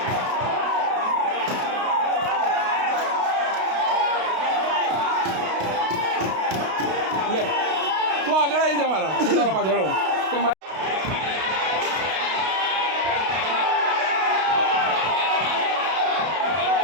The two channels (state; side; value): late; left; 32 ms